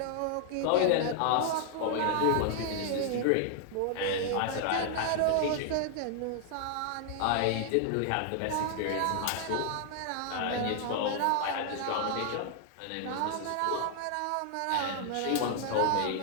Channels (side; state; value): both; different; correlation 0.00